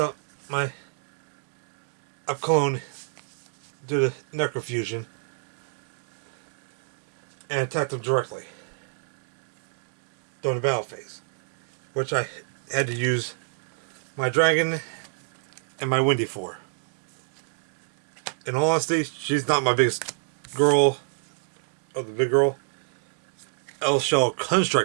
my clone due to necrofusion and attacked him directly during the battle phase, which I had to use my dragon and my Windy for. In all honesty, she's not my biggest girl, or the big girl. L-Shell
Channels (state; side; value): silent; left; digital silence